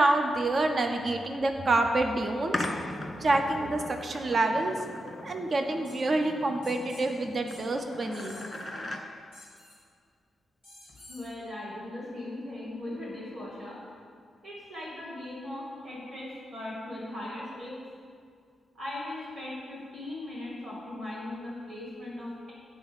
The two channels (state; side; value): normal; both; correlation 0.88